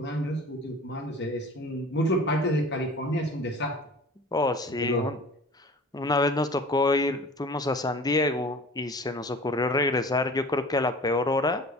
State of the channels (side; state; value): both; normal; correlation 0.42